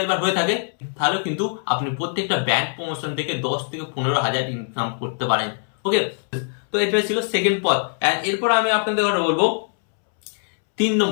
হয়ে থাকে তাহলে কিন্তু আপনি প্রত্যেকটা ব্র্যান্ড প্রমোশন থেকে 10 থেকে 15,000 ইনকাম করতে পারেন। ওকে, তো এটা ছিল সেকেন্ড পথ। এরপর আমি আপনাদের বলবো 3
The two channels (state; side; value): silent; right; 64 dB below the other